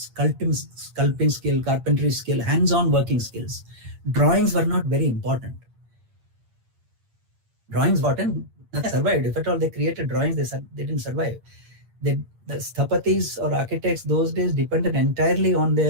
skill, carpentry skill, hands-on working skills. Drawings were not very important. Drawings important, nothing survived. If at all they created drawings, they didn't survive. The sthapatis or architects those days depended entirely on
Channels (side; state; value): left; late; 8.7 ms